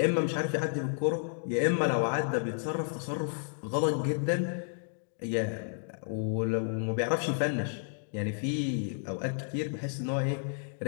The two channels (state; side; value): silent; right; digital silence